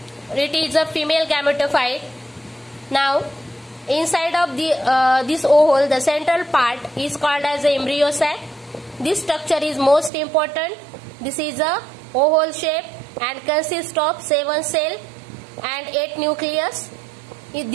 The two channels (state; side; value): drops out; left; at 10.1 s